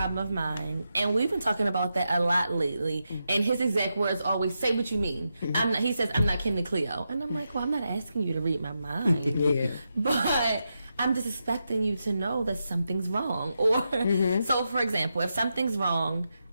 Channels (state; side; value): inverted; both; correlation -0.86